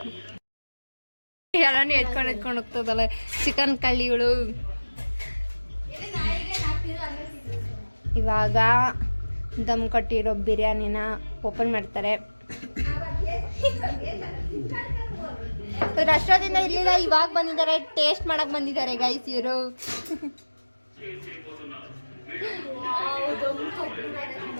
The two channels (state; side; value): inverted; both; correlation -1.00